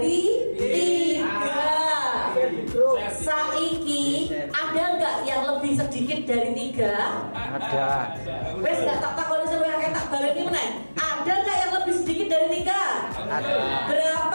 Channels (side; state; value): both; inverted; correlation -1.00